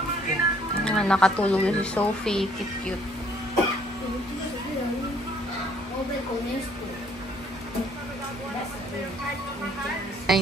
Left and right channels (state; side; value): normal; both; correlation 0.62